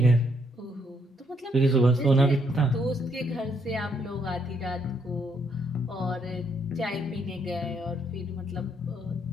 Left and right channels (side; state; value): both; normal; correlation 0.72